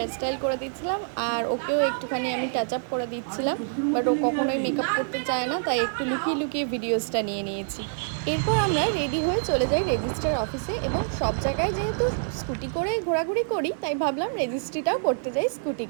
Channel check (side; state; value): left; silent; digital silence